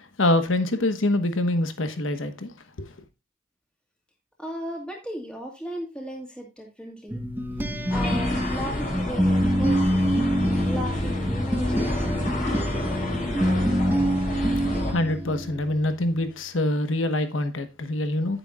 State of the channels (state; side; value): normal; both; correlation 0.72